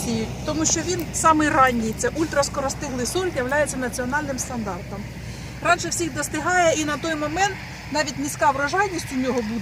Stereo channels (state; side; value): identical; both; correlation 1.00